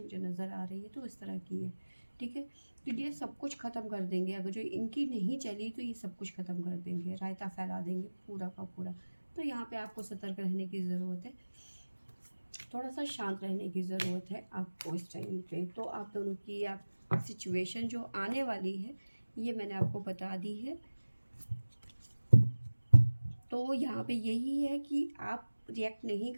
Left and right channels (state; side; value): inverted; both; correlation -1.00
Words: नज़र आ रही है तो इस तरह की है, ठीक है। तो ये सब कुछ ख़त्म कर देंगे, अगर जो इनकी नहीं चली तो ये सब कुछ ख़त्म कर देंगे, रायता फैला देंगे पूरा का पूरा। तो यहाँ पे आपको सतर्क रहने की ज़रूरत है, थोड़ा सा शांत रहने की ज़रूरत है आपको इस टाइम पे। तो आप दोनों की आप सिचुएशन जो आने वाली है ये मैंने आपको बता दी है। तो यहाँ पे यही है कि आप रिएक्ट नहीं